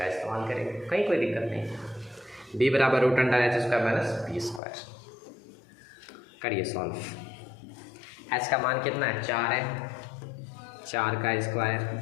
इस्तेमाल करेंगे, कहीं कोई दिक्कत नहीं। b बराबर √h² माइनस p²। करिए सॉल्व। h का मान कितना है, 4 है, 4 का स्क्वायर।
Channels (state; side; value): drops out; right; at 4.6 s